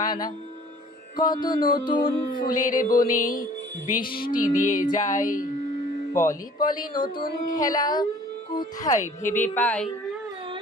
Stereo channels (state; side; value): normal; both; correlation 0.51